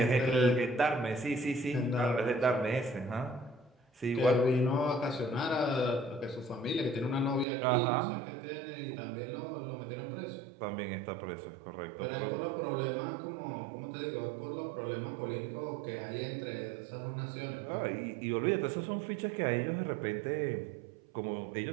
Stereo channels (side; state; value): left; drops out; at 7.5 s